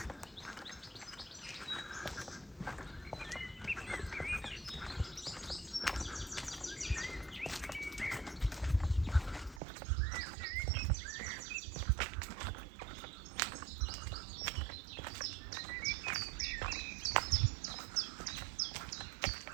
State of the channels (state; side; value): drops out; left; at 9.6 s